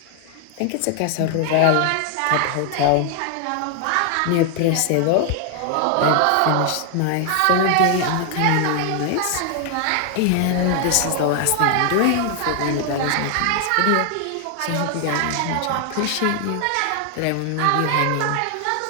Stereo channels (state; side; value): different; both; correlation 0.00